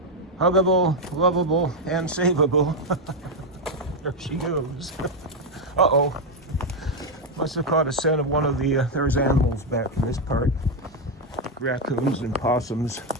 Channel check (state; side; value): normal; both; correlation 0.04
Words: Huggable, lovable, and savable. There she goes. Uh-oh. Must have caught a scent of one of the, there's animals back in this part. Raccoons and possums.